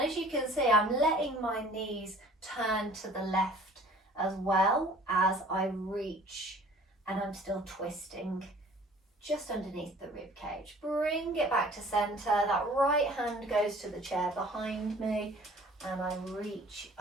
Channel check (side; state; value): both; normal; correlation 0.51